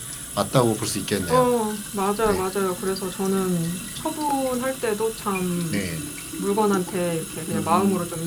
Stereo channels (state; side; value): identical; both; correlation 1.00